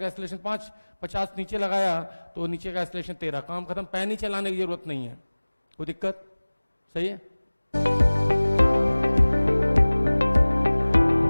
एक्सेलरेशन 5, 50 नीचे लगाया तो नीचे का एक्सेलरेशन 13, काम खत्म। पैन ही चलाने की जरूरत नहीं है, कोई दिक्कत? सही है।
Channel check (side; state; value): both; inverted; correlation -1.00